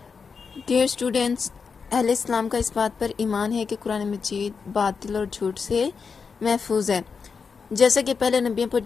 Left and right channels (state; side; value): quieter; right; 5.5 dB